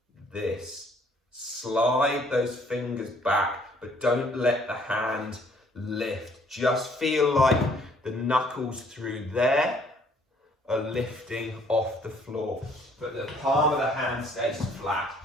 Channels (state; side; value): normal; both; correlation 0.62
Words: this. Slide those fingers back, but don't let the hand lift. Just feel like the knuckles through there are lifting off the floor, but the palm of the hand stays flat.